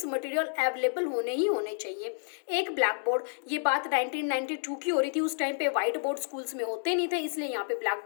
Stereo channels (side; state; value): right; silent; digital silence